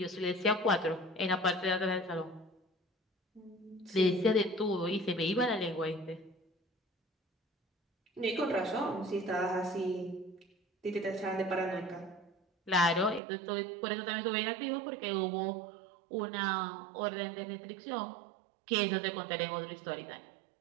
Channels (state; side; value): drops out; left; at 13.2 s